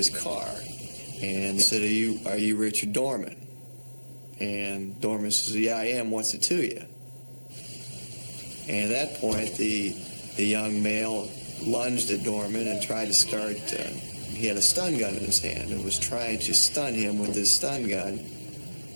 car and said, are you Richard Dorman? And Dorman says, yeah, I am. What's it to you? And at that point, the young male lunged at Dorman and tried to start, he had a stun gun in his hand and was trying to stun him with his stun gun.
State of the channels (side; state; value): both; inverted; correlation -1.00